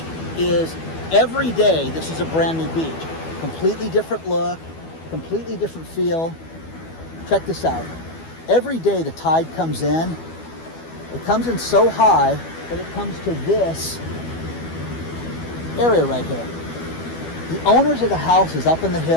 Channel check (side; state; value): right; late; 12 ms